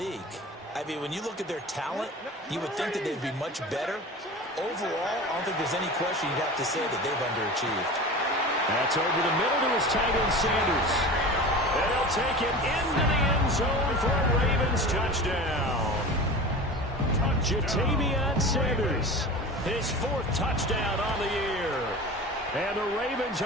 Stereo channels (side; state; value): both; normal; correlation 0.34